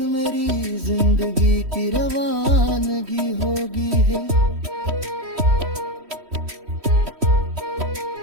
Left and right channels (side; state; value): left; late; 3.1 ms